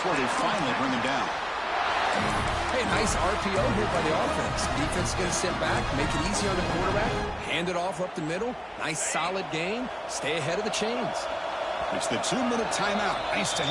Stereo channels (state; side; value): identical; both; correlation 1.00